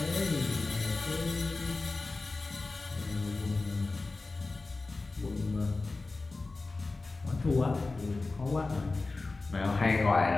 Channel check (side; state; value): right; quieter; 3.5 dB